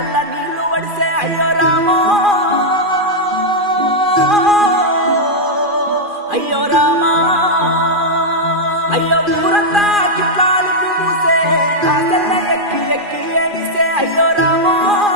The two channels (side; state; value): left; late; 2.4 ms